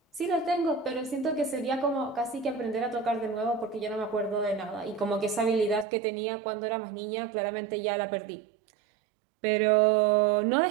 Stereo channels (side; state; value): left; drops out; at 5.9 s